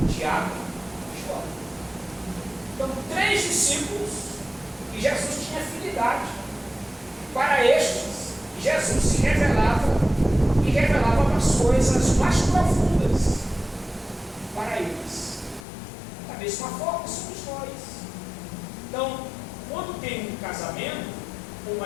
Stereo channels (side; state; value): right; drops out; at 15.7 s